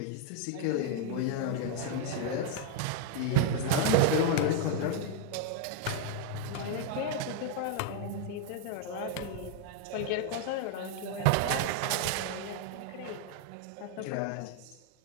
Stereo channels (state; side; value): different; both; correlation 0.00